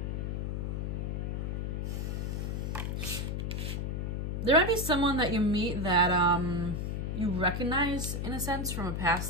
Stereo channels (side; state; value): left; noise; hum, 1 dB below the sound